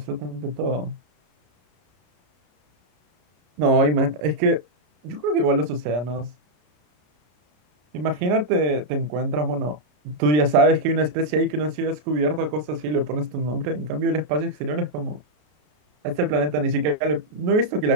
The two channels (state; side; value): late; left; 33 ms